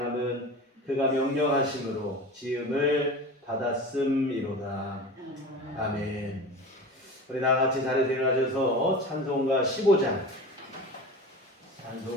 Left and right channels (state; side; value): normal; both; correlation 0.33